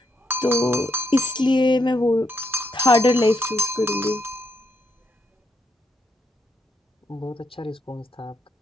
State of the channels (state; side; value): normal; both; correlation 0.78